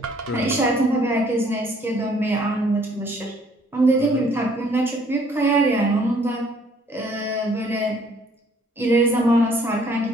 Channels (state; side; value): normal; both; correlation 0.61